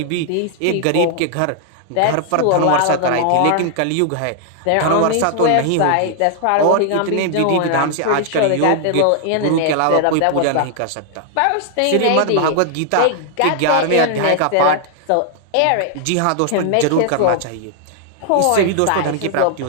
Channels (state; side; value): different; both; correlation 0.00